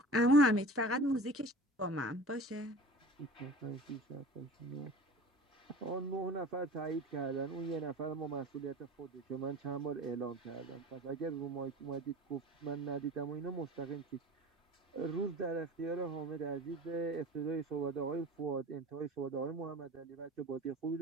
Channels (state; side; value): normal; both; correlation 0.38